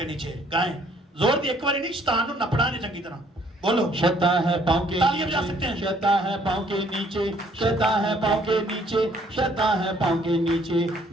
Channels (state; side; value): normal; both; correlation 0.62